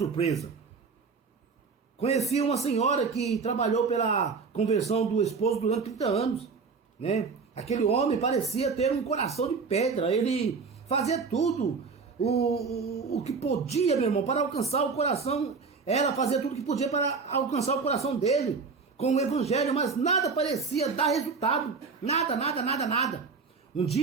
Conheci uma senhora que trabalhou pela conversão do esposo durante 30 anos. Né? Aquele homem parecia ter um coração de pedra. Ele fazia tudo o que podia, meu irmão, para alcançar o coração. Ela fazia tudo o que podia para alcançar o coração dele com o evangelho, mas nada parecia dar resultado. Nada. Um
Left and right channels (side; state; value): left; quieter; 5.0 dB